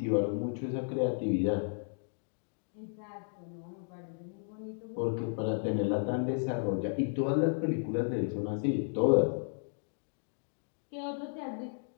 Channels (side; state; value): right; silent; digital silence